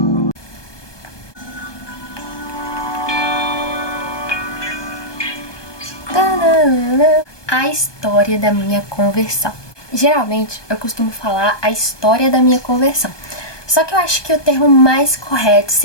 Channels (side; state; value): right; late; 1.2 ms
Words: A história da minha conversão. Geralmente eu costumo falar a história da minha conversão, só que eu acho que o termo mais correto